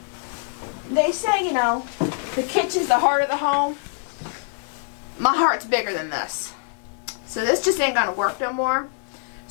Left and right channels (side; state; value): right; silent; digital silence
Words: They say, you know, the kitchen's the heart of the home. My heart's bigger than this. So this just ain't gonna work no more.